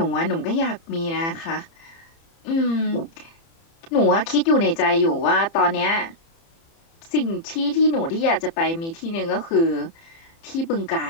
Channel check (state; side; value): late; right; 30 ms